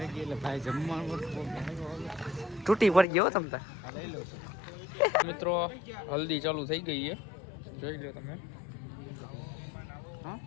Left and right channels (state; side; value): drops out; right; at 3.1 s